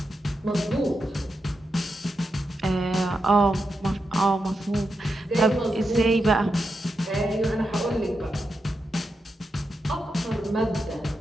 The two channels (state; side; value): normal; both; correlation 0.86